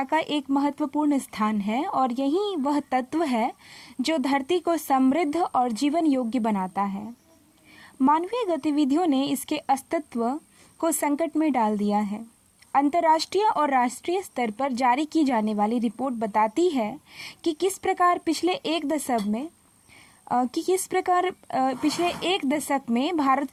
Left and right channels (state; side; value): identical; both; correlation 1.00